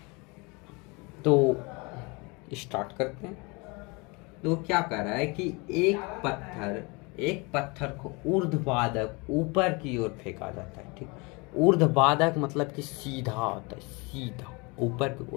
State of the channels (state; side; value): quieter; right; 27.9 dB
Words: तो स्टार्ट करते हैं। तो क्या कह रहा है कि एक पत्थर को ऊर्ध्वाधक ऊपर की ओर फेंका जाता है, ठीक। ऊर्ध्वाधक मतलब कि सीधा होता है, सीधा ऊपर की,